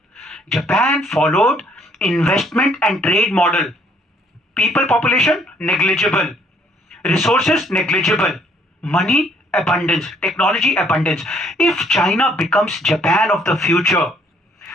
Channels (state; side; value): normal; both; correlation 0.65